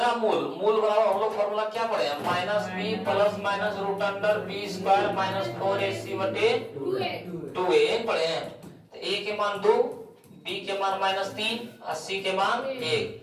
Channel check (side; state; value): both; identical; correlation 1.00